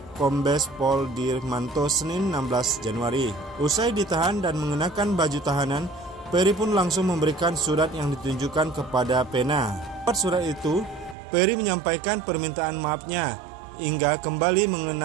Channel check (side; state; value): left; drops out; at 11.2 s